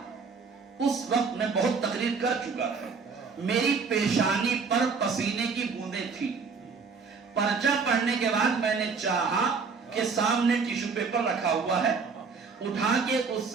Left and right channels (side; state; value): left; quieter; 5.1 dB